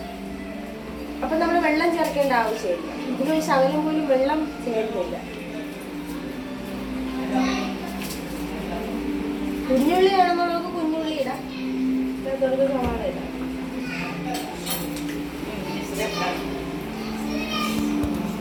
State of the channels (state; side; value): identical; both; correlation 1.00